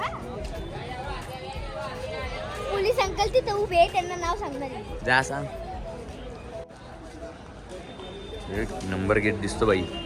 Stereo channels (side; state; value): both; identical; correlation 1.00